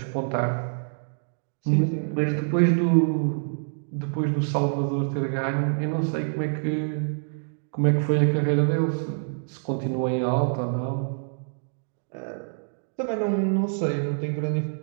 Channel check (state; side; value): silent; left; digital silence